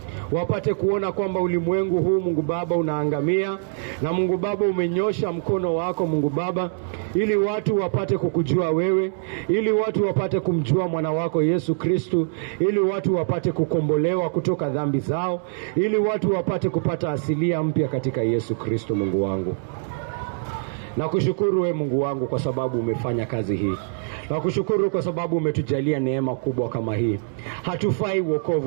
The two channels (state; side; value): silent; left; digital silence